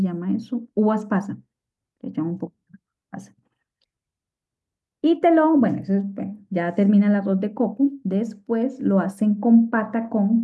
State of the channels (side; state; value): both; identical; correlation 1.00